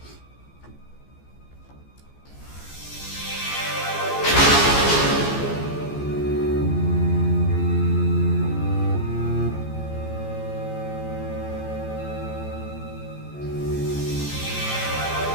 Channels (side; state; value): right; late; 14 ms